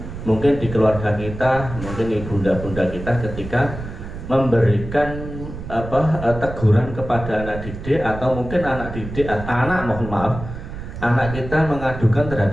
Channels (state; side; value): noise; right; rumble, 10 dB below the sound